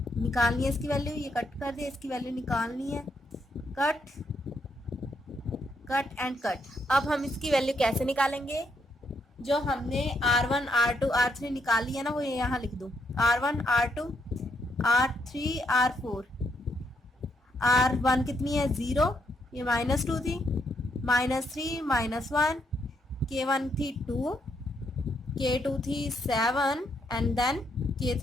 निकालनी है इसकी वैल्यू, ये कट कर दिया, इसकी वैल्यू निकालनी है। Cut and cut. अब हम इसकी वैल्यू कैसे निकालेंगे? जो हमने R1 R2 R3 निकाली है ना, वो यहाँ लिख दो। R1 R2 R3 R4। R1 कितनी है? 0, ये -2 थी, -3 -1, K1 थी 2, K2 थी 7 एंड देन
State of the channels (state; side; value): normal; both; correlation 0.76